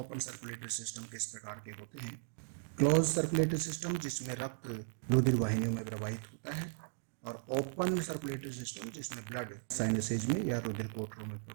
सर्कुलेटरी सिस्टम किस प्रकार के होते हैं। क्लोज सर्कुलेटरी सिस्टम जिसमें रक्त रुधिर वाहिनियों में प्रवाहित होता है, और ओपन सर्कुलेटरी सिस्टम जिसमें ब्लड साइनसेज में या रुधिर कोटरों में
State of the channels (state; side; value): silent; left; digital silence